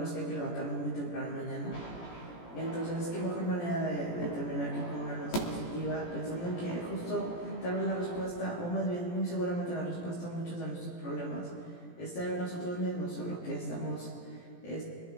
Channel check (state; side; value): late; right; 17 ms